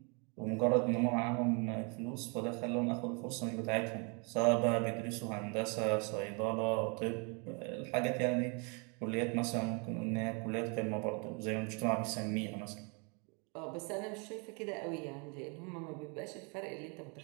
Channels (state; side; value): quieter; left; 33.9 dB